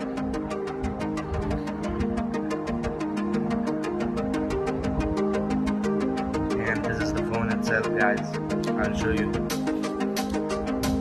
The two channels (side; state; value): both; identical; correlation 1.00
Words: And this is the phone itself, guys. I'll show you.